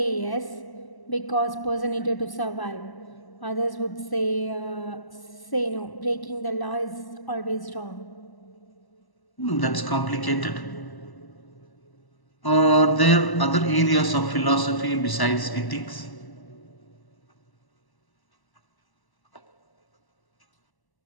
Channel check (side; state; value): right; late; 1.0 ms